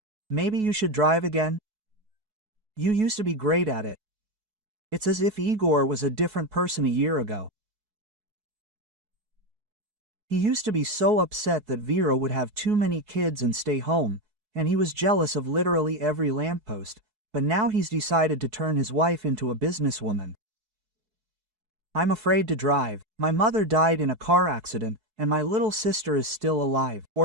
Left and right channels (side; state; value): left; late; 4.7 ms